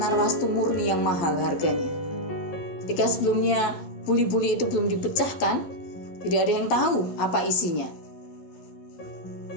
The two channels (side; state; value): right; late; 12 ms